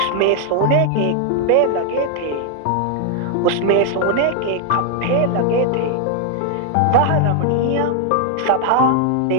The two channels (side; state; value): both; different; correlation 0.00